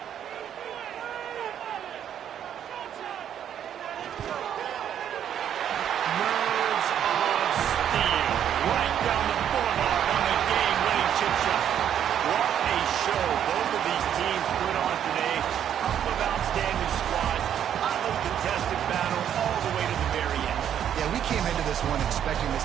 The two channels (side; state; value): left; quieter; 9.6 dB